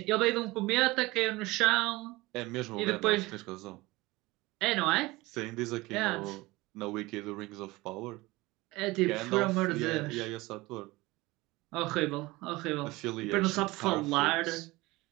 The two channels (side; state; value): left; quieter; 20.9 dB